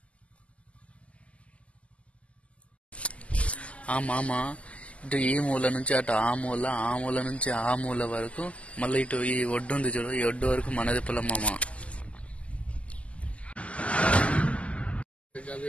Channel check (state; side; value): late; right; 0.062 ms